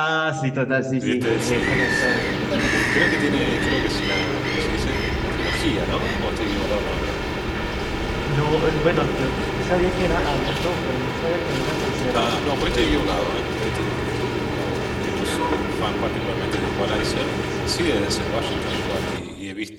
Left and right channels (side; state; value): both; identical; correlation 1.00